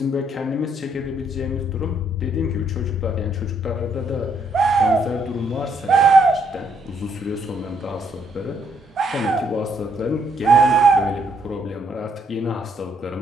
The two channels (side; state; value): both; normal; correlation 0.71